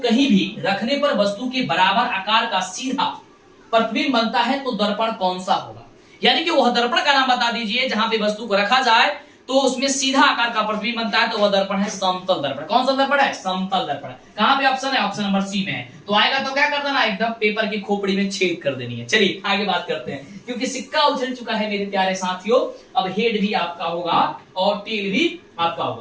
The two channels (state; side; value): identical; both; correlation 1.00